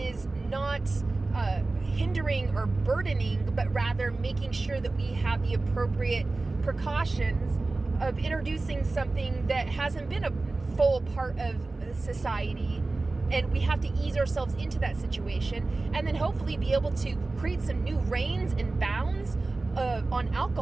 not hindering or burdening, but rather making sure that we have the appropriate precautions of introducing something that hasn't been a full part of society, and we have to ease ourselves into that situation and then hopefully be able to create some new reins and bounds on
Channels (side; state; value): left; quieter; 3.3 dB